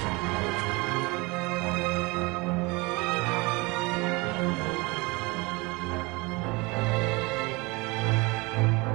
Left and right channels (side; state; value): left; quieter; 25.5 dB